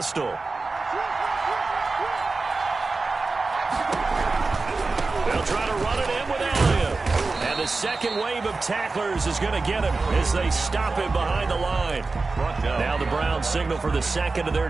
They'll try to run it in with Elliott. And the second wave of tacklers is going to get him as they stop him behind the line. Now the Browns signal for the 2nd of their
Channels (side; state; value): left; quieter; 3.8 dB